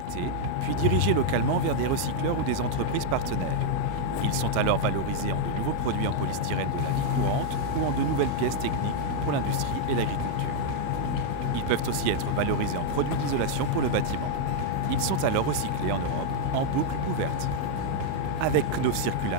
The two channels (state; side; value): different; both; correlation -0.01